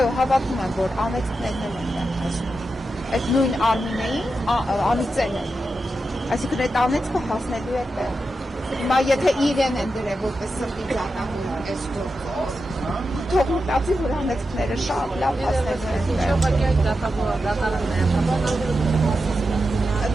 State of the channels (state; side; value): normal; both; correlation 0.89